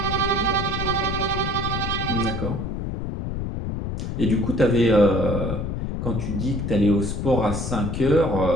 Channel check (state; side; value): noise; left; rumble, 3 dB below the sound